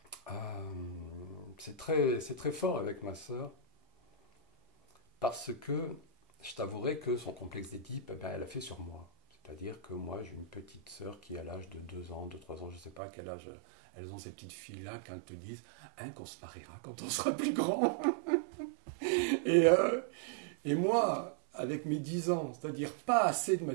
c'est très fort avec ma sœur. Parce que je t'avouerai que son complexe d'Édipe, eh ben, elle a fait sur moi. C'est-à-dire que moi, j'ai une petite sœur qui a l'âge de 2 ans, de 3 ans, je ne sais pas à quel âge elles ont ces petites filles-là quand elles te disent hein, qu'on se mariera quand on sera plus grand. Et, euh, et moi, avec mes 10 ans, c'est-à-dire pas assez de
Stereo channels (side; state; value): left; drops out; at 13.0 s